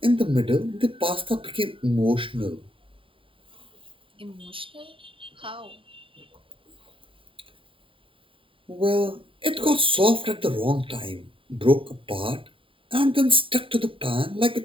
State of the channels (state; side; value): late; left; 0.25 ms